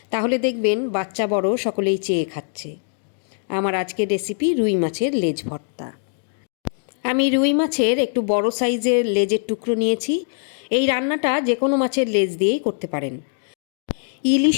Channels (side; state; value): right; silent; digital silence